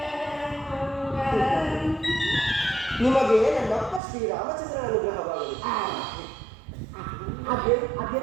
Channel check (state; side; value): drops out; left; at 4.0 s